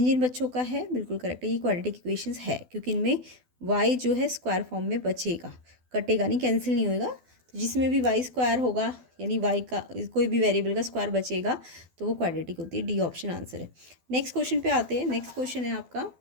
जिन बच्चों का है बिल्कुल करेक्ट है। ये क्वाड्रेटिक इक्वेशंस है, क्योंकि इनमें y जो है स्क्वायर फॉर्म में बचेगा, कटेगा नहीं, कैंसिल नहीं होएगा। तो जिसमें भी वाई स्क्वायर होगा, यानी वाई का कोई भी वेरिएबल का स्क्वायर बचेगा, तो वो क्वाड्रेटिक होती है। डी ऑप्शन आंसर है। नेक्स्ट क्वेश्चन पे आते हैं। नेक्स्ट क्वेश्चन है आपका,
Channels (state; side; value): late; left; 12 ms